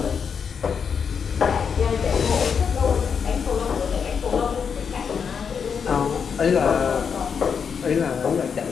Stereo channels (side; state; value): right; quieter; 6.6 dB